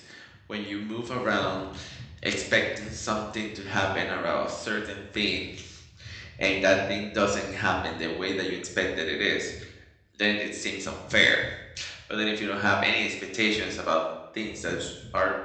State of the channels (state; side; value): identical; both; correlation 1.00